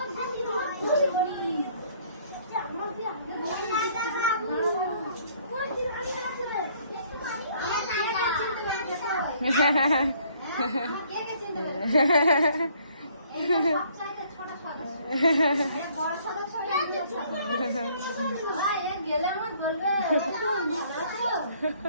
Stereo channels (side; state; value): both; inverted; correlation -0.61